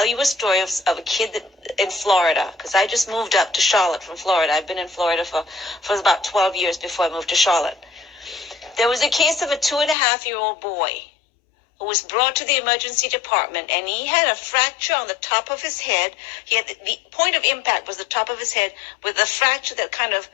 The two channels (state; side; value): drops out; right; at 10.0 s